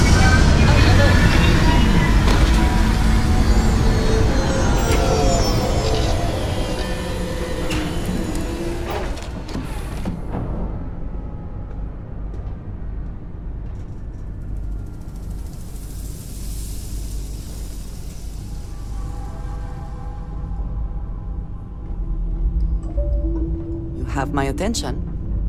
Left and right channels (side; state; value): both; identical; correlation 1.00